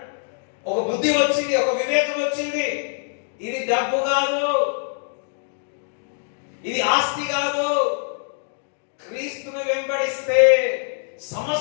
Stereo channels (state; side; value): silent; right; 61 dB below the other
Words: ఒక బుద్ధి వచ్చింది, ఒక వివేకం వచ్చింది. ఇది డబ్బు కాదు, ఇది ఆస్తి కాదు. క్రీస్తును వెంబడిస్తే